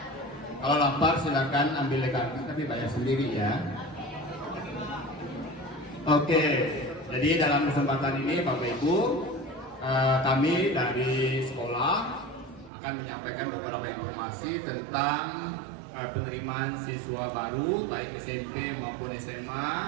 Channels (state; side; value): drops out; left; at 12.7 s